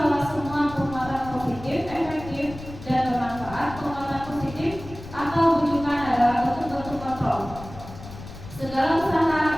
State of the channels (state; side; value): noise; left; rumble, 14 dB below the sound